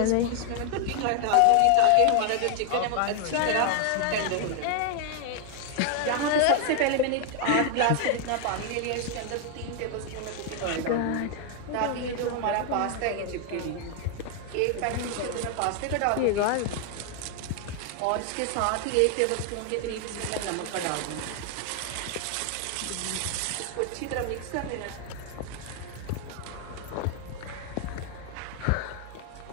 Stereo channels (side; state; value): both; different; correlation 0.00